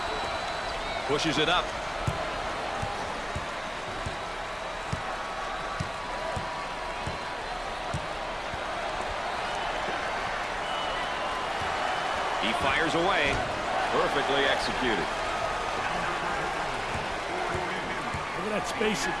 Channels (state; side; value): identical; both; correlation 1.00